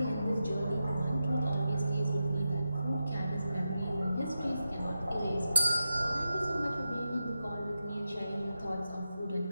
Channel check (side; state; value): both; inverted; correlation -0.89